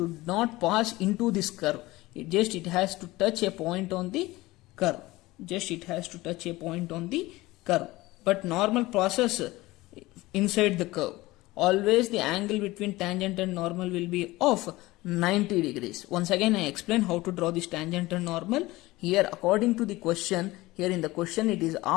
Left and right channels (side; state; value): right; quieter; 19.5 dB